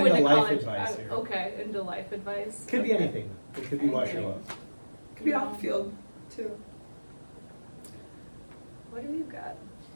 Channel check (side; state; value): both; inverted; correlation -1.00